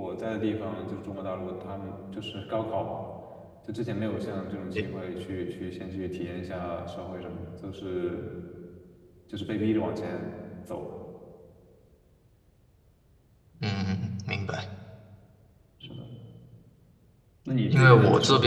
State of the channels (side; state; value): both; identical; correlation 1.00